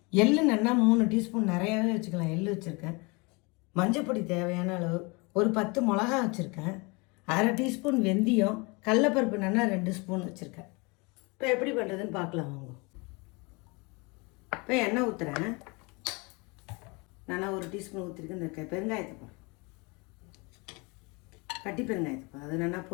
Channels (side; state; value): right; quieter; 28.3 dB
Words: எள்ளு நல்லா 3 டீஸ்பூன் நிறையாவே வச்சுக்கலாம், எள்ளு வச்சுருக்கேன். மஞ்சப்பொடி தேவையான அளவு, ஒரு 10 மிளகா வச்சுருக்கேன். அரை டீஸ்பூன் வெந்தயம், கடலப்பருப்பு நல்லா 2 ஸ்பூன் வச்சுருக்கேன். இப்போ எப்படி பண்ணுறதுன்னு பார்க்கலாம் வாங்க. இப்போ எண்ணெய் ஊற்றுறேன். நல்லா 1 டீஸ்பூன் ஊற்றிருக்கேன். இந்த பெருங்காயத்தை போகிறேன், கட்டி பெருங்காயத்தை போகிறேன். அது நல்லா